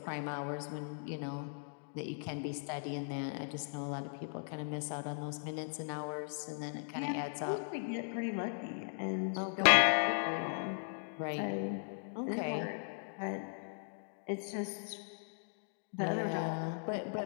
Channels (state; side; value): silent; right; digital silence